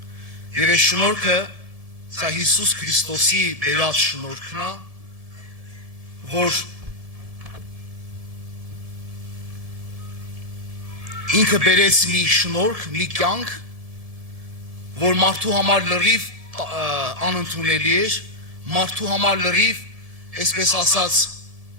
Եվ այս շնորհքը սա Հիսուս Քրիստոսի բերած շնորհքն է, որ ինքը բերեց մի շնորհք, մի կյանք, որ մարդու համար լրիվ անընդունելի էր, մարդու համար լրիվ, այսպես ասած,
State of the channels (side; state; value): left; late; 1.7 ms